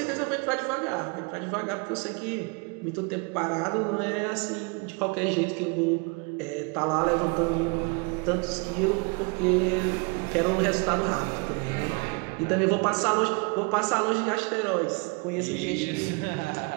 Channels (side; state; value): left; quieter; 32.0 dB